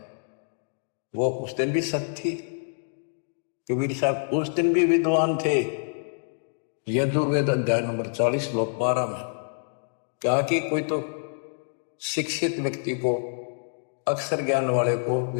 वो उस दिन भी सत्य थी। कबीर साहब उस दिन भी विद्वान थे। यजुर्वेद अध्याय नंबर 40 श्लोक 12 में कहा कि कोई तो शिक्षित व्यक्ति को, अक्षर ज्ञान वाले को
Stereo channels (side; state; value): right; silent; digital silence